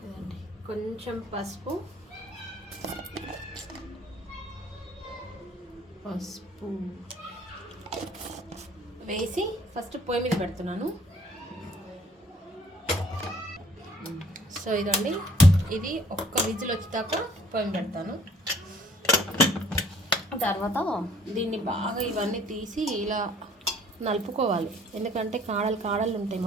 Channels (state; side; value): normal; both; correlation 0.58